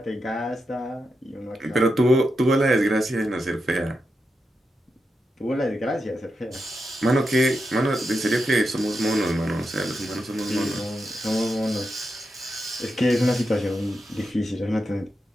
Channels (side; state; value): both; normal; correlation 0.87